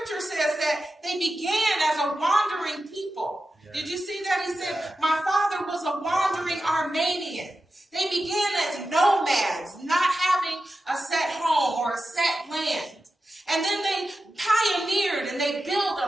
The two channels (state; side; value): normal; both; correlation 0.92